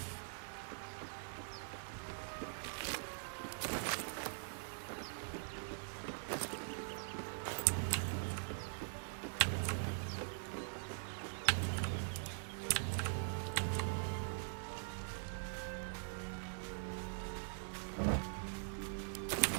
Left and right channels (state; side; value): silent; left; digital silence